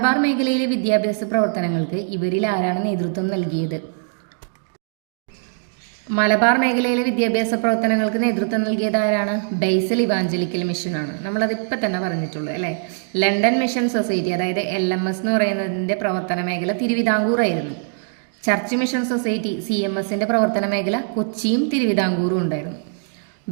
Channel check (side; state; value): left; silent; digital silence